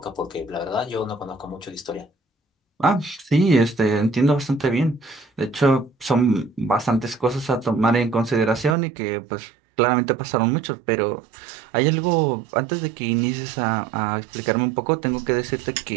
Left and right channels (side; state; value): left; drops out; at 8.8 s